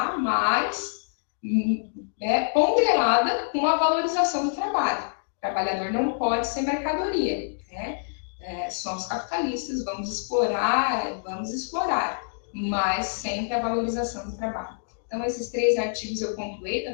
mas ponderada com a valorização do trabalho. O trabalhador não pode ser mercadoria, né? Somos capitalistas, vamos explorar, mas sempre a valorização do trabalho. Então, esses 3 artigos eu pontuei da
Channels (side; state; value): right; silent; digital silence